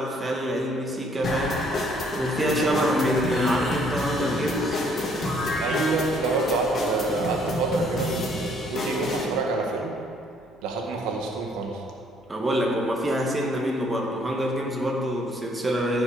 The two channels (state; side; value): normal; both; correlation 0.64